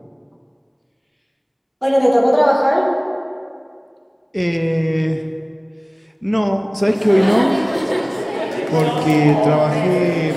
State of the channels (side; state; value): both; identical; correlation 1.00